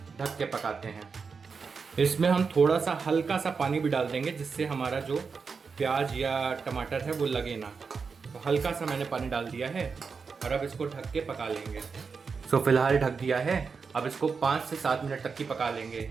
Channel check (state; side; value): quieter; left; 5.3 dB